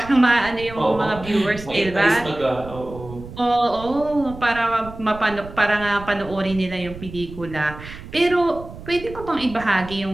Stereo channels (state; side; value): noise; right; rumble, 14 dB below the sound